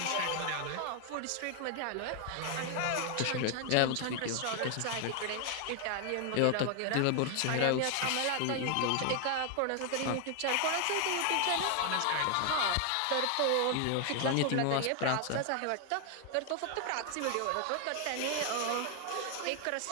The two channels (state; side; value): different; both; correlation 0.00